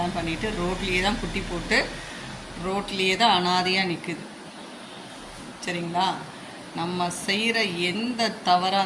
பண்ணிவிட்டு, ரோட்லேயே தான் குட்டி போட்டு, ரோட்லேயே தான் அனாதையாக நிற்குது. சரிங்களா? நம்ம செய்கிற எந்த தவறாக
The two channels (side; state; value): both; identical; correlation 1.00